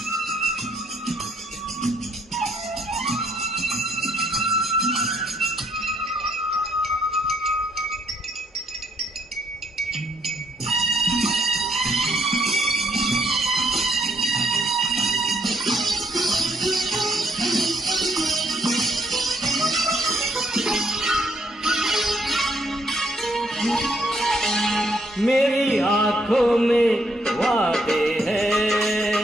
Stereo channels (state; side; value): normal; both; correlation 0.71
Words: मेरी आँखों में वादे